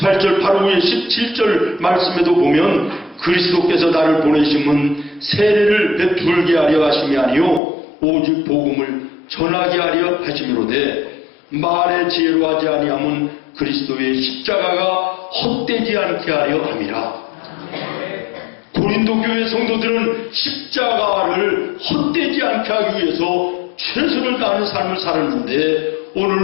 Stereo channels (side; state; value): right; drops out; at 7.6 s